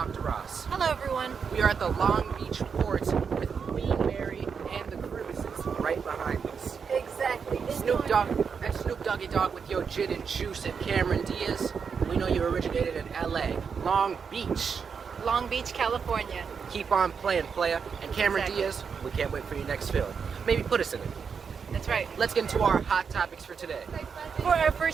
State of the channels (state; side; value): quieter; left; 6.2 dB